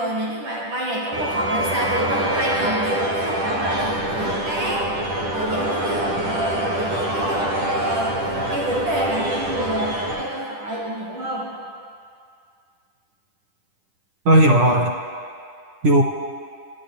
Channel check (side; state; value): left; late; 10 ms